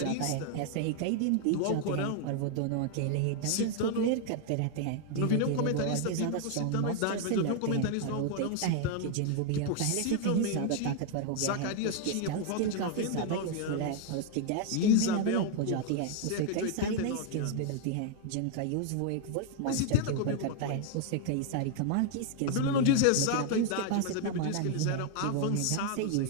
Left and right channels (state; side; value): different; both; correlation 0.00